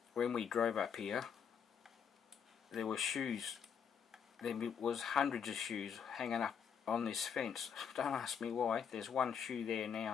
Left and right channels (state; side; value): quieter; right; 7.3 dB